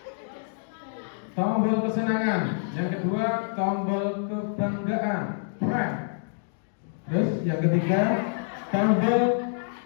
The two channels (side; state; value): right; silent; digital silence